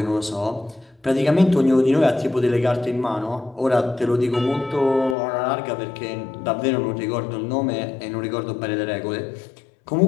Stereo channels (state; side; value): drops out; right; at 5.2 s